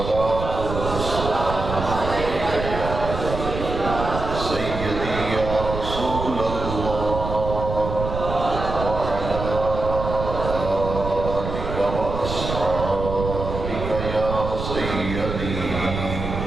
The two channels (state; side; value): noise; right; rumble, 6 dB below the sound